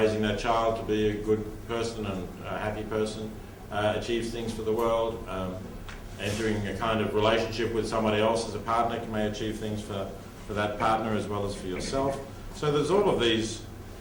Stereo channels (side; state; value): both; identical; correlation 1.00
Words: that child to be a good person and a happy person achieves things for the world. Entering a kind of relationship with somebody else as a partner may achieve things for that partner as well as for yourself. So there's all of these